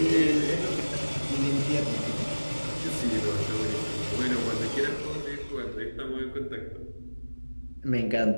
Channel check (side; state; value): both; inverted; correlation -1.00